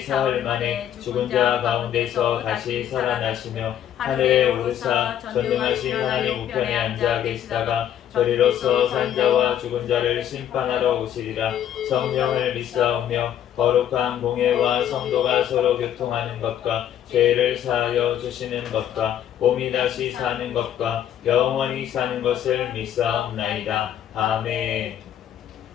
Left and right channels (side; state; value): right; quieter; 10.4 dB